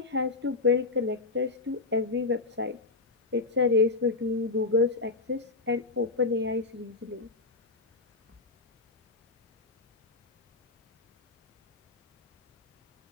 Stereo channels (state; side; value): quieter; right; 3.7 dB